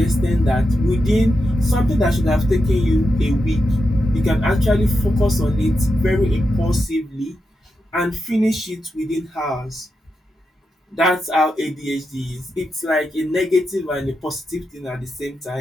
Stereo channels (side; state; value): both; normal; correlation 0.87